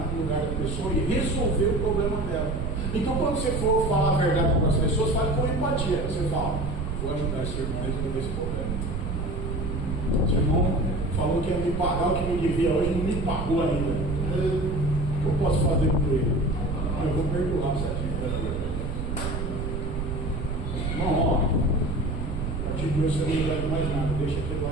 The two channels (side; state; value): right; noise; rumble, 3 dB below the sound